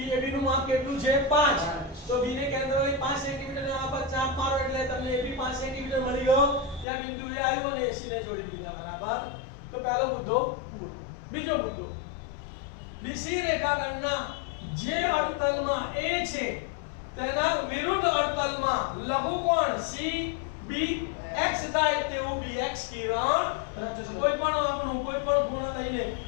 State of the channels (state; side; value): drops out; right; at 6.9 s